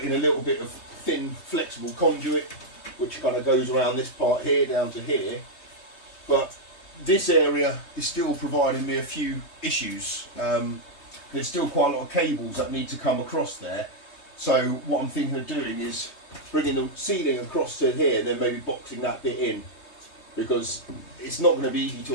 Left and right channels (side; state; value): right; late; 3.2 ms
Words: in a little bit of thin flexible conduit which kind of goes around this part here down to here, but this area is still providing me a few issues. There's still quite a lot of cables that need to come across there, so what I'm thinking of doing is bringing the ceiling across to here and then maybe boxing that bit in, because it's not going to be easy to